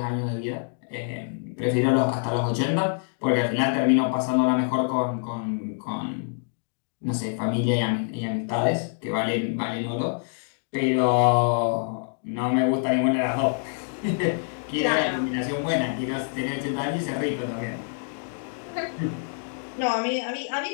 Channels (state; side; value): silent; right; digital silence